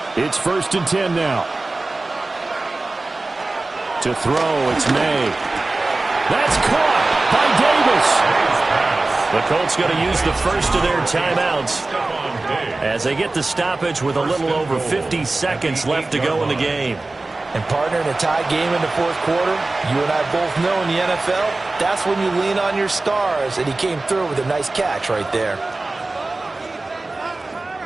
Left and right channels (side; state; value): left; quieter; 3.2 dB